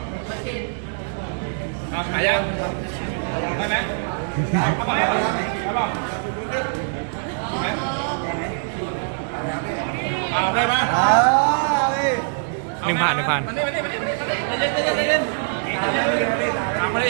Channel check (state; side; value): silent; left; 64 dB below the other